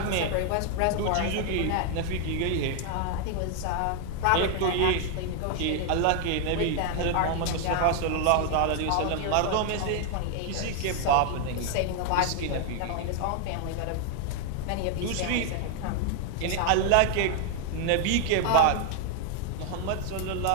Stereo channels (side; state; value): both; different; correlation 0.00